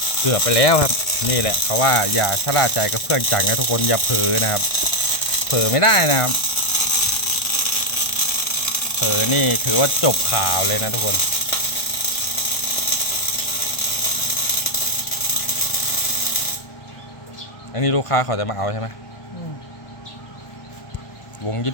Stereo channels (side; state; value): right; late; 1.4 ms